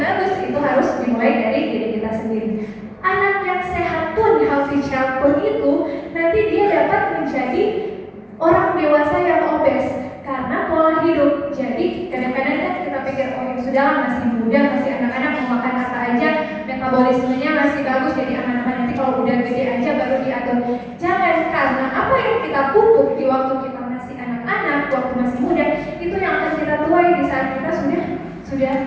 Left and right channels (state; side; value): identical; both; correlation 1.00